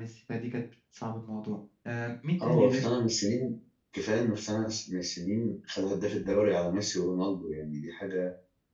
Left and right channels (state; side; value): identical; both; correlation 1.00